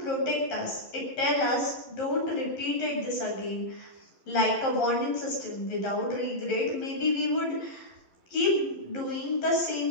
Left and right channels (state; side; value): late; right; 11 ms